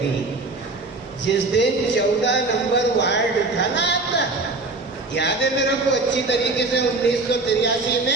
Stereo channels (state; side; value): quieter; left; 3.4 dB